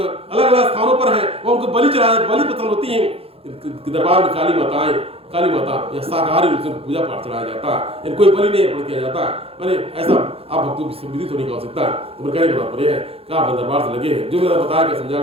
अलग स्थानों पर है, वो उनको बलि चढ़ाया, बलि पसंद होती है। दरबार में काली माता या शाकाहारी रूप से पूजा पाठ चढ़ाया जाता है, कोई बलि नहीं अर्पण किया जाता है। मैंने ऐसा आप भक्तों की विदित होने का हो सकता है। तो मेरे कहने का तात्पर्य है कि आप दरबार से लगे हैं, जो मेरा बताया कि समझाया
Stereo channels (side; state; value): left; late; 0.28 ms